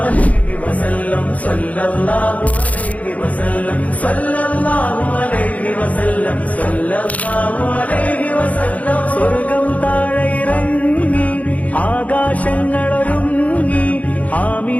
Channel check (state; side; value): late; right; 0.070 ms